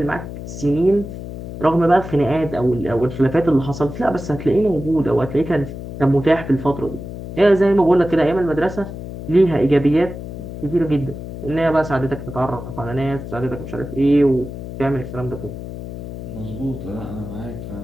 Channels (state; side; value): noise; left; hum, 9 dB below the sound